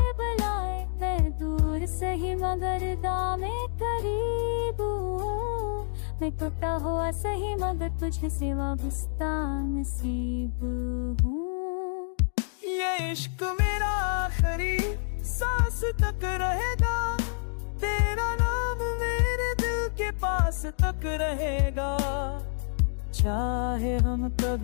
बुलाए। मैं दूर सही मगर दामे करीब हूँ, मैं टूटा हुआ सही मगर तुझे से वाबस्ता नसीब हूँ। ये इश्क मेरा आखिरी सांस तक रहेगा, तेरा नाम मेरे दिल के पास तक रहेगा। चाहे हम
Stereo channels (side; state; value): right; silent; digital silence